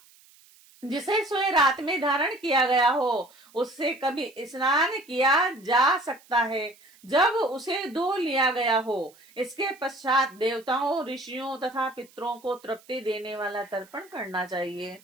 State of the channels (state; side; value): noise; right; hiss, 27 dB below the sound